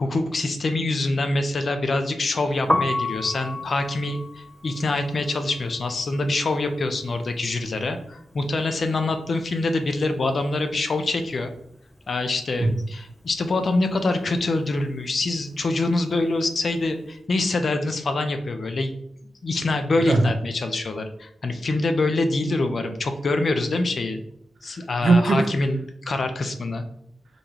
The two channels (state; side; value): normal; both; correlation 0.89